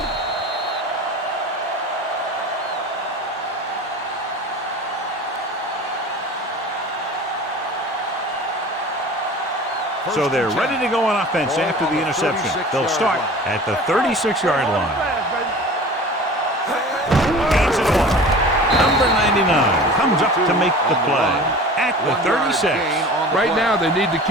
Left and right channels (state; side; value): normal; both; correlation 0.39